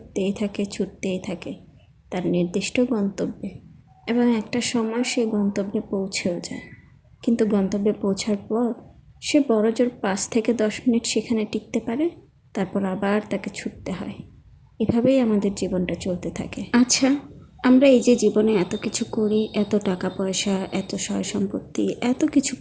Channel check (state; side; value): identical; both; correlation 1.00